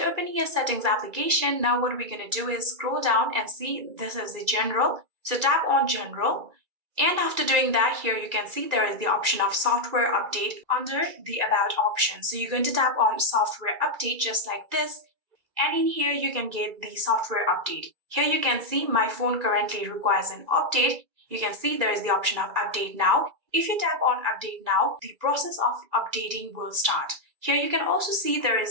opening your settings application, now what we're going to do is scroll down and see this is the general. So tap on general. And after doing that, here you can see there is the option of software update under the about option. So you're going to tap on software update just like this. And in here, you can get the software update. Here you can see my phone currently requires an update. You can see there is the option of update now. If you tap on update now, the process of updating will start. Here you can also see there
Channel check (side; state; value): left; late; 2.1 ms